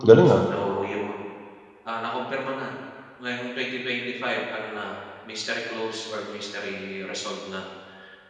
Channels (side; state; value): both; identical; correlation 1.00